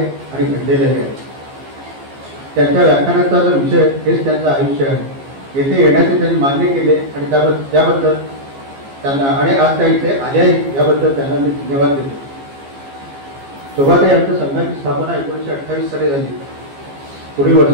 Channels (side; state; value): left; late; 15 ms